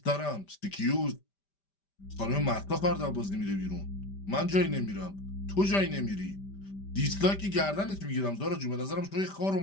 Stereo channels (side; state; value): right; late; 5.1 ms